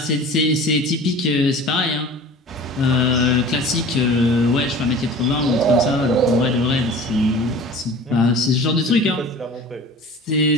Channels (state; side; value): normal; both; correlation 0.41